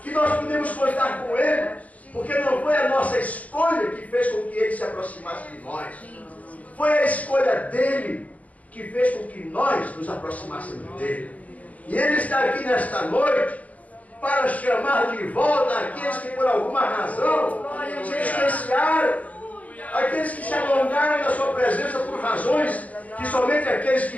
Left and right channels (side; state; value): right; late; 0.071 ms